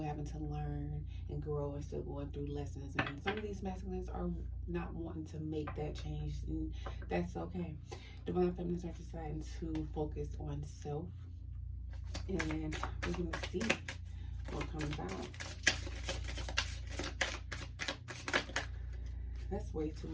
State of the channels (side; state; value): both; identical; correlation 1.00